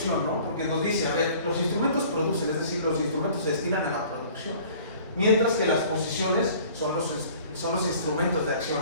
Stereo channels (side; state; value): both; inverted; correlation -0.50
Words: no? Porque nos dice, a ver, los instrumentos producen, es decir, los instrumentos se destinan a la producción, mientras que las posiciones son los instrumentos de acción,